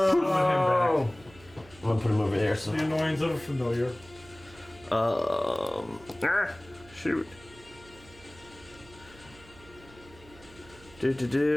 him I'm gonna put him over there. So, back. The annoyance of a familiar. shoot.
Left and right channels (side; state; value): right; noise; hum, 23 dB below the sound